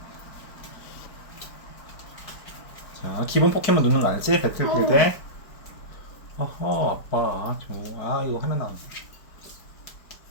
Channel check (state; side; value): late; right; 4.6 ms